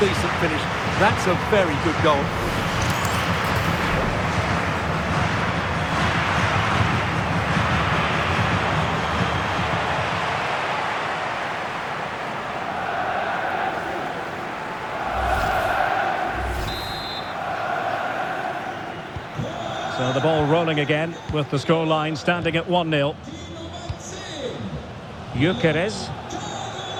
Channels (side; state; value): both; identical; correlation 1.00